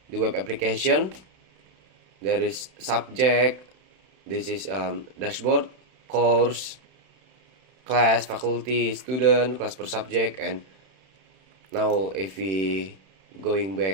the web application. There is subject, this is dashboard, course, class, faculty, student, class per subject. And now if we going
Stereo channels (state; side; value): late; left; 31 ms